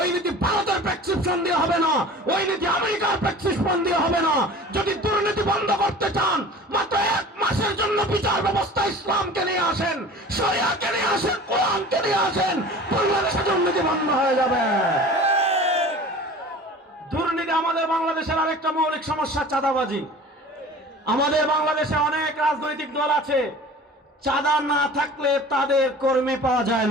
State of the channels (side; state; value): both; normal; correlation 0.41